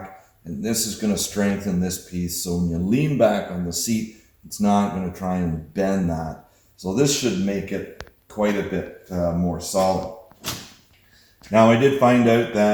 and this is going to strengthen this piece. So when you lean back on the seat, it's not going to try and bend that. So this should make it quite a bit more solid. Now I did find out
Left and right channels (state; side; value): identical; both; correlation 1.00